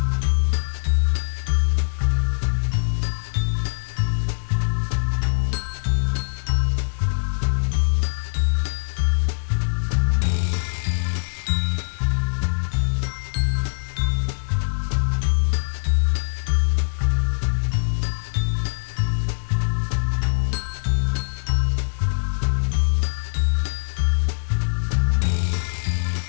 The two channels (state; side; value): silent; right; 64 dB below the other